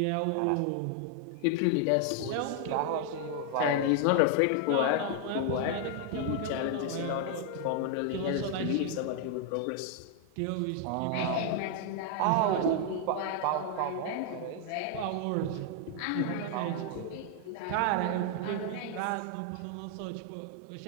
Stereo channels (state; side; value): different; both; correlation 0.00